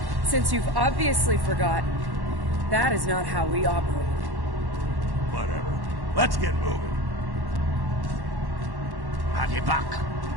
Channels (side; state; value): left; late; 1.1 ms